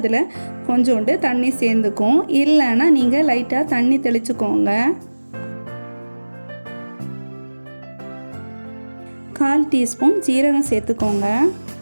கொஞ்சோண்டு தண்ணி சேர்ந்துக்கும். இல்லைன்னா நீங்கள் லைட்டாக தண்ணி தெளிச்சுக்கோங்க. 1/4 டீஸ்பூன் ஜீரகம் சேர்த்துக்கோங்க.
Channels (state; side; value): inverted; both; correlation -1.00